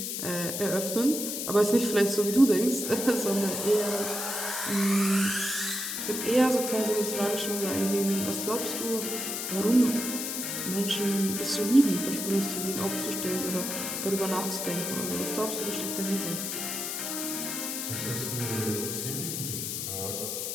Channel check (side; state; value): left; noise; hiss, 3 dB below the sound